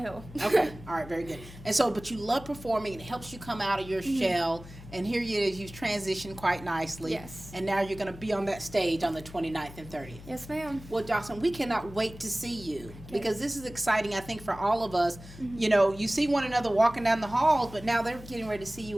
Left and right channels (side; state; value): left; noise; hum, 16 dB below the sound